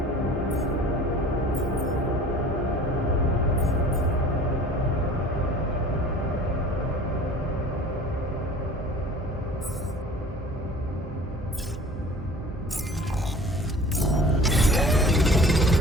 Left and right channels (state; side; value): normal; both; correlation 0.45